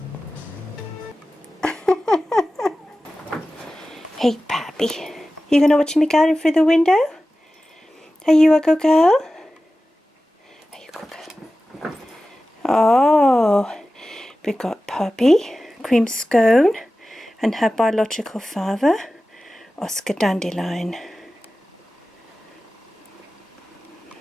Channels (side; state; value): both; normal; correlation 0.95